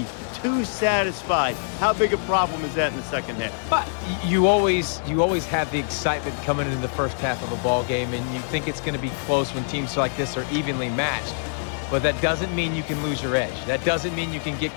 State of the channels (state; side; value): silent; right; 62 dB below the other